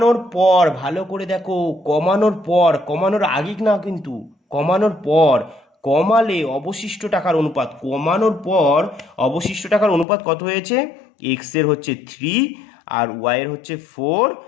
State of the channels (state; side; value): drops out; right; at 10.1 s